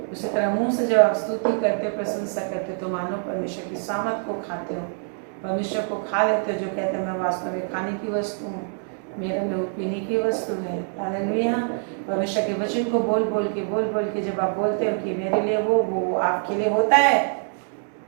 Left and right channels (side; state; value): left; silent; 56 dB below the other